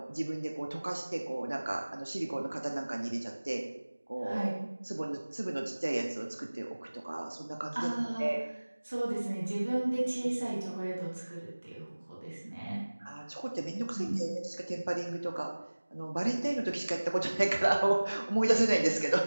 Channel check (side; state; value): both; inverted; correlation -1.00